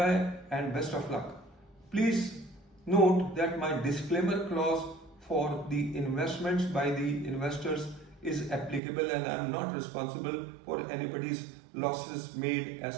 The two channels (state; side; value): drops out; left; at 8.8 s